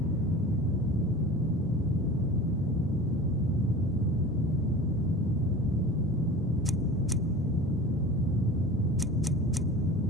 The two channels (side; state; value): both; normal; correlation 0.37